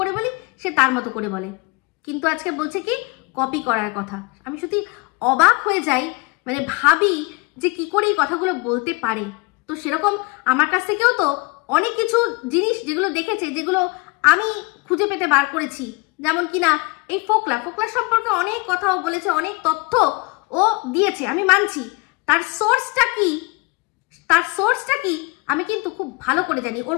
বলি, সে তার মতো করে বলে, কিন্তু আজকে বলছে কি কপি করার কথা। আমি সত্যি অবাক হয়ে যাই, মানে ভাবি যে কি করে এই কথাগুলো বলতে পারে। তো সেরকম আমার কাছ থেকেও তো অনেক কিছু জিনিস যেগুলো দেখেছে, যেগুলো আমি খুঁজে পেতে বার করেছি, যেমন কিনা এই ফোকলা সম্পর্কে অনেক কথাও বলেছে, অনেক তথ্য ও দিয়েছে, আমি মানছি। তার সোর্সটা কি আমি কিন্তু খুব ভালো করে জানি। ওর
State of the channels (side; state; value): right; quieter; 27.9 dB